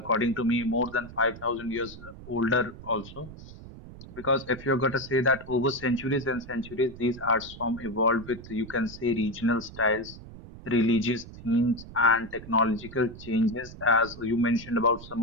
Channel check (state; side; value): noise; right; rumble, 15 dB below the sound